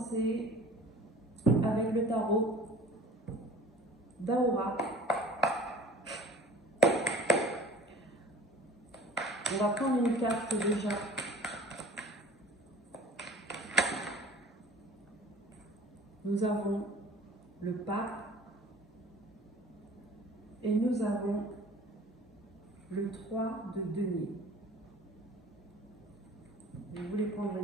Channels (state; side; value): normal; both; correlation 0.45